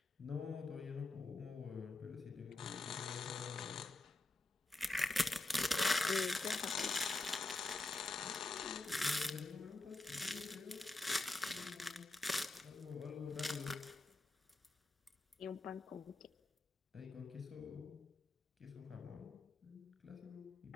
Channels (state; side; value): quieter; right; 3.1 dB